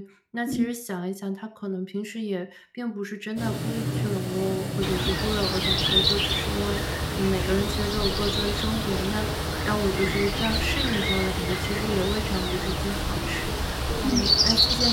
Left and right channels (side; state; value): both; identical; correlation 1.00